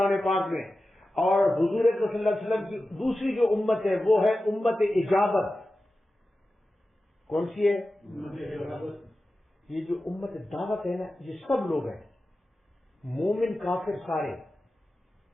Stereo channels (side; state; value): both; normal; correlation 0.94